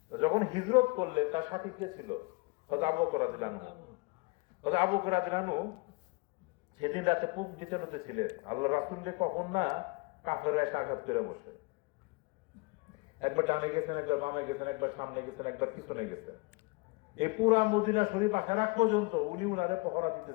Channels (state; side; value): quieter; right; 27.7 dB